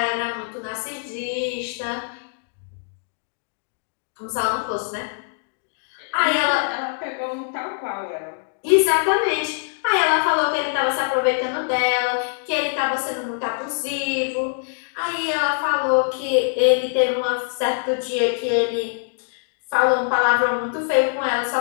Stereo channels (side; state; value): right; silent; digital silence